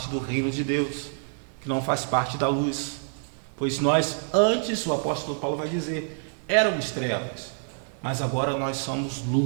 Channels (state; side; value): silent; left; 60 dB below the other